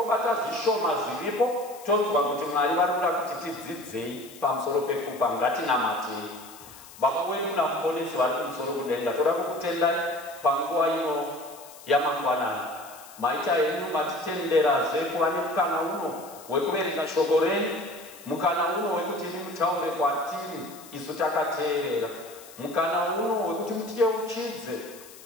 zvishoma zviripo, tonzwa kuti Mwari vari kuda kuti tidzidzei pamusoro pekupa. Ngatinamatei. Baba wedu namuponesi vari kumusoro kudenga, toda kukutendai panguva ino yamangwanani. Maita henyu matitenderazve kuva nemukana uno wekuverenga shoko renyu, mukana uno wekuti imi mutaure kwatiri isu takateerera, mukana uno wekuti mutiyeuchidze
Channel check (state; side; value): noise; left; hiss, 19 dB below the sound